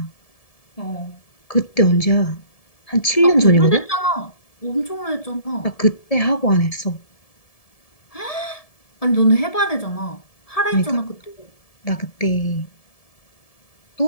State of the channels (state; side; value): late; right; 1.7 ms